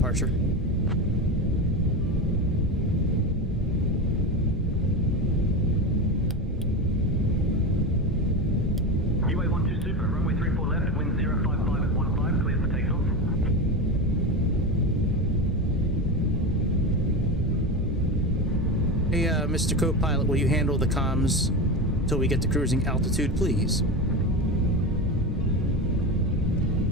UA412 Super, runway 34 left, wind 055 at 15, clear for takeoff. Mr. Co-Pilot, will you handle the comms until we get to cruising altitude, please?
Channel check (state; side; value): normal; both; correlation 0.21